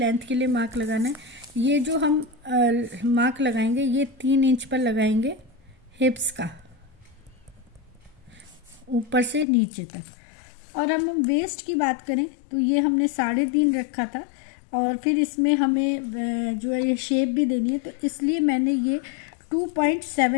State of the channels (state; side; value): drops out; right; at 9.5 s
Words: के लिए मार्क लगाना है। ये जो हम मार्क लगाएंगे ये 3 इंच पर लगाएंगे हिप्स का, ऊपर से नीचे तक। और हम वेस्ट की बात करें तो ये हमने 3.5 रखा था, और फिर इसमें हमें जो है ये शेप भी देनी है, तो इसलिए मैंने ये